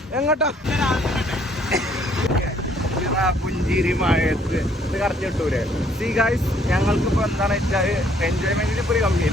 എങ്ങോട്ടാ? പുഞ്ചിരി മഴയത്ത് ഇത് കറക്റ്റ് കിട്ടൂലേ? സീ ഗൈസ്, ഞങ്ങൾക്കിപ്പോൾ എന്താണെന്ന് വെച്ചാൽ എൻജോയ്മെന്റിന് ഇപ്പോൾ ഒരു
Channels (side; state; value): both; normal; correlation 0.64